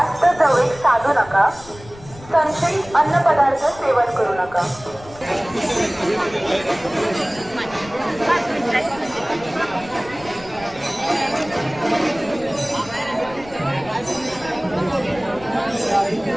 जवळ साधू नका. संशयित अन्नपदार्थ सेवन करू नका.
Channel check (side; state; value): left; noise; rumble, 19 dB below the sound